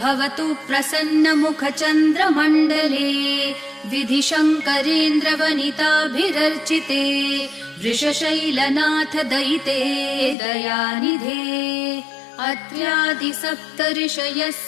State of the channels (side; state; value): right; drops out; at 10.4 s